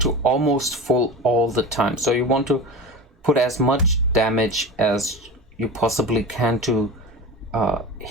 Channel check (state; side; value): normal; both; correlation 0.29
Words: almost full all the time. So you want to put as much damage as you possibly can to